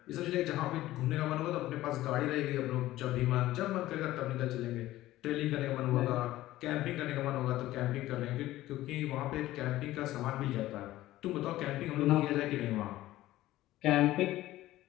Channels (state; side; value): quieter; right; 15.7 dB